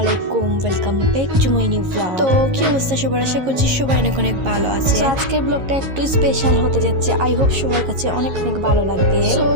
welcome back to my new blog. তো কি অবস্থা সবার? আশা করছি সবাই অনেক অনেক ভালো আছে। তো আজকের ব্লগটা একটু স্পেশাল হতে যাচ্ছে, আই হোপ সবার কাছে অনেক অনেক ভালো লাগবে। তো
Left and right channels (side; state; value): left; late; 11 ms